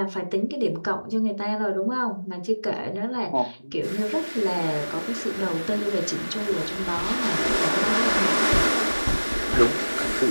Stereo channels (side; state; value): both; inverted; correlation -1.00